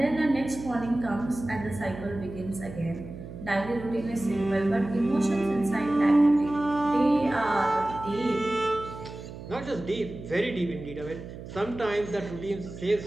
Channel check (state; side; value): noise; right; hum, 12 dB below the sound